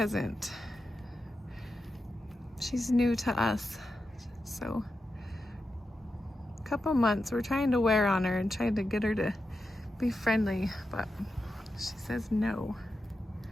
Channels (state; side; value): normal; both; correlation 0.89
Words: She's new to us. So, a couple months, we're trying to wear on her and trying to get her to be friendly, but she says no.